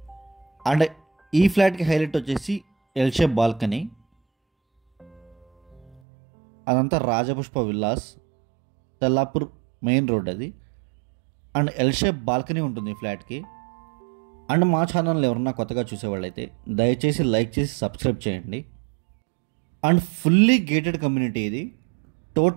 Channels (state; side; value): drops out; left; at 6.0 s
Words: అండ్ ఈ ఫ్లాట్కి హైలైట్ వచ్చేసి ఎల్ షేప్ బాల్కనీ, అదంతా Rajapushpa villas, Tellapur main road అది. అండ్ ఎల్ షేప్ బాల్కనీ ఉంటుంది ఈ ఫ్లాట్కి. అండ్ మా ఛానల్ ఎవరన్నా కొత్తగా చూసేవాళ్ళైతే దయచేసి లైక్ చేసి సబ్స్క్రైబ్ చేయండి. అండ్ ఫుల్లీ గేటెడ్ కమ్యూనిటీ ఇది.